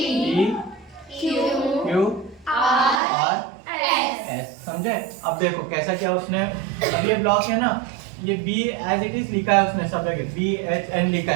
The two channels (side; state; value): left; drops out; at 3.0 s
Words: Q R S, समझे। अब देखो कैसा किया उसने, अब ये ब्लॉक है ना, ये बी एज इट इज लिखा है उसने सब जगह, बी एच एन लिखा